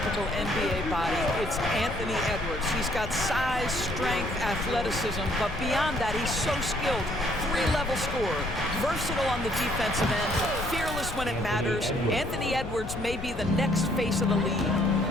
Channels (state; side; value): noise; left; rumble, 9 dB below the sound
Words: NBA body, it's Anthony Edwards. He's got size, strength, athleticism, but beyond that, he's so skilled. Three-level scorer, versatile on the defensive end, fearless when it matters. Anthony Edwards may be the next face of the league.